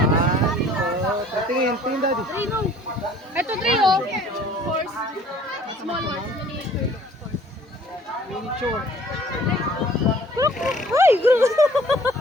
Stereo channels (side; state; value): both; normal; correlation 0.54